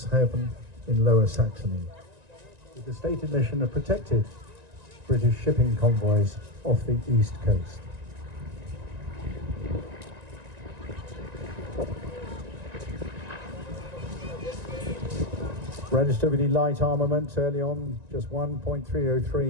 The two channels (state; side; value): late; left; 1.9 ms